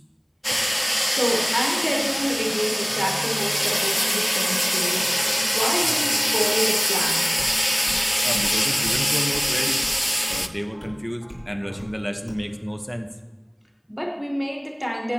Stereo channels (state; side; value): identical; both; correlation 1.00